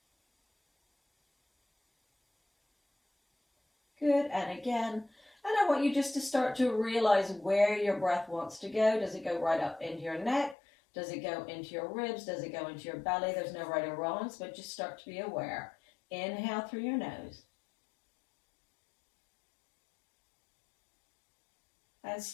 Good, and again. And I want you just to start to realize where your breath wants to go. Does it go right up into your neck? Does it go into your ribs? Does it go into your belly? There's no right or wrongs, but just start to be aware. Inhale through your nose. And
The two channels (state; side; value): drops out; right; at 10.6 s